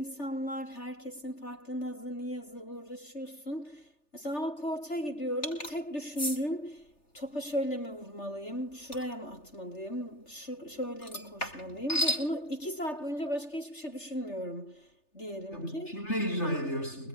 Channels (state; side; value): late; right; 3.3 ms